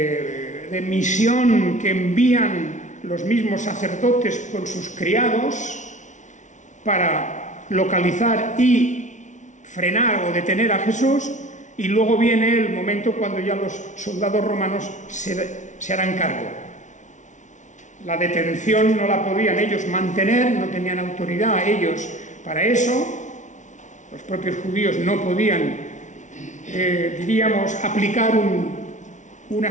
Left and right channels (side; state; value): right; late; 0.36 ms